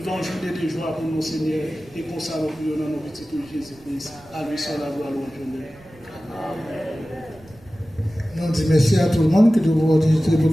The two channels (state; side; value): noise; right; rumble, 25 dB below the sound